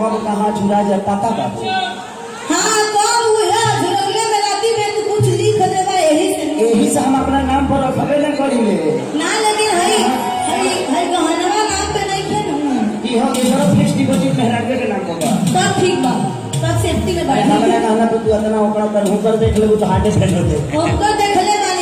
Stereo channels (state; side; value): identical; both; correlation 1.00